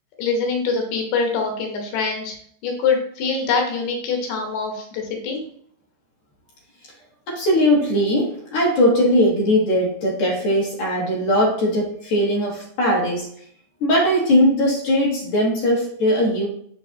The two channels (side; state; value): right; late; 13 ms